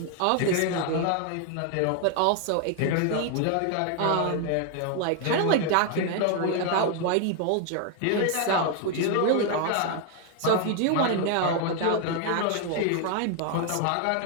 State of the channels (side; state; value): both; different; correlation 0.00